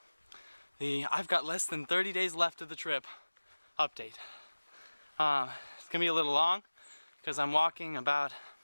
the I've got less than 30 days left of the trip update. It's going to be a little long because I'm walking about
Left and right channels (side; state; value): both; inverted; correlation -1.00